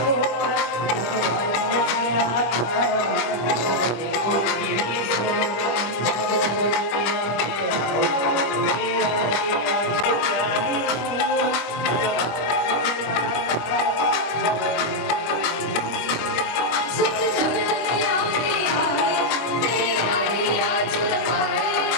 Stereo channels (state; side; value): late; right; 25 ms